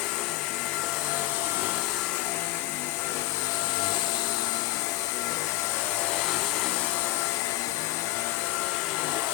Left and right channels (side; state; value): right; quieter; 17.4 dB